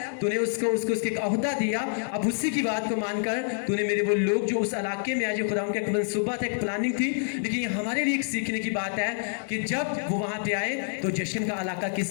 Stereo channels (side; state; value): right; silent; digital silence